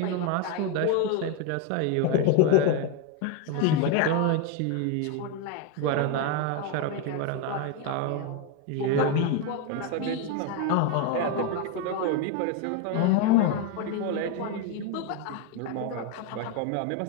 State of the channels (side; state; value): both; different; correlation 0.02